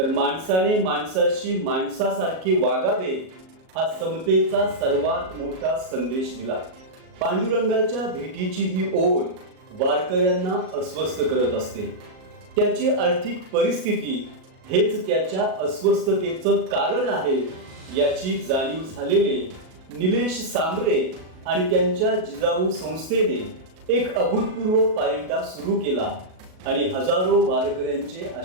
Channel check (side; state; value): left; late; 38 ms